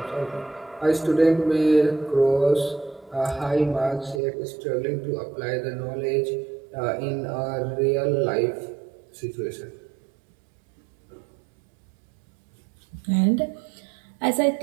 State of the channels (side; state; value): left; drops out; at 4.2 s